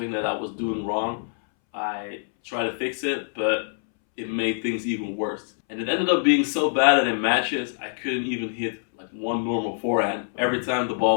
that I was doing wrong, I tried to fix it, but it made things even worse. And it ended up being so bad that in matches, I couldn't even hit like one normal forehand. Every time the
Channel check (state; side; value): silent; right; 62 dB below the other